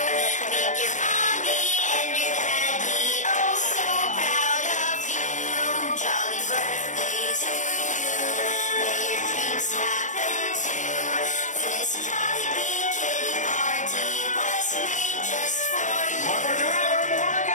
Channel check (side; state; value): right; late; 0.36 ms